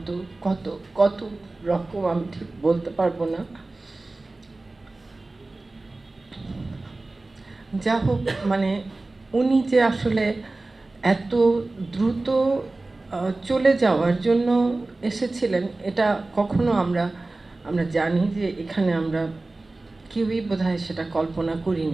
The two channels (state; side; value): quieter; left; 3.1 dB